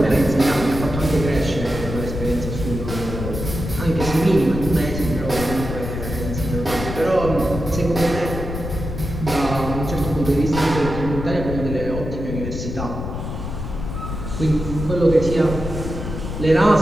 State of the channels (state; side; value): noise; left; rumble, 6 dB below the sound